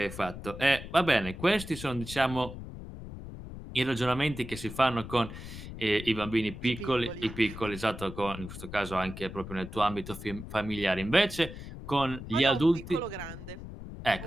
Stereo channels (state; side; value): noise; left; rumble, 11 dB below the sound